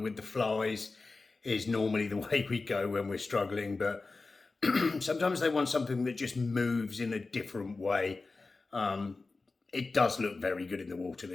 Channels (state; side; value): quieter; right; 3.8 dB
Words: the flies is normally the way we go when we're struggling, but sometimes they want something that just moves in a different way. It does look very good in the water,